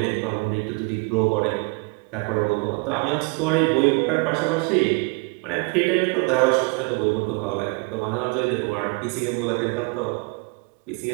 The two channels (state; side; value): quieter; left; 30.0 dB